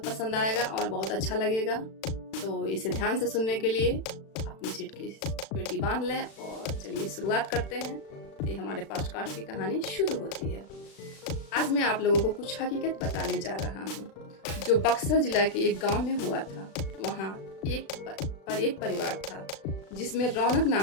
पसंद आएगा और बहुत अच्छा लगेगा। तो इसे ध्यान से सुनने के लिए अपनी सीट की पेटी बांध लें और चलिए शुरुआत करते हैं। तो हमारे पॉडकास्ट की कहानी शुरू होती है। आज मैं आप लोगों को कुछ हकीकत बताने जा रहा हूँ जो बक्सर जिला के एक गांव में हुआ था। वहाँ एक परिवार था जिसमें रौनक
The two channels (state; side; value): late; right; 36 ms